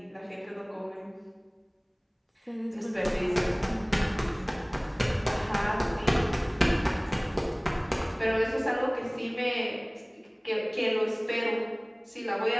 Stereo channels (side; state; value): both; identical; correlation 1.00